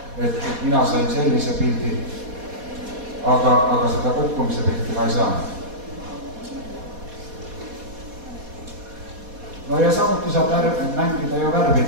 et mina sain sellise pildi, aga seda kukkumise pilti ma ei saanud. No ja samuti saab mängida ju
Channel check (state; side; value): late; left; 4.2 ms